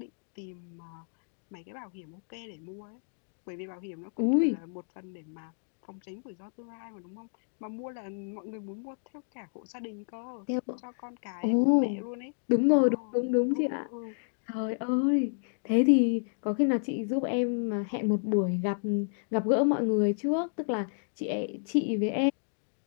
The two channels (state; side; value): silent; right; digital silence